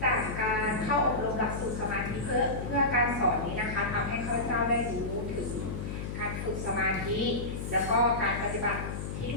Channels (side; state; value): left; noise; hum, 5 dB below the sound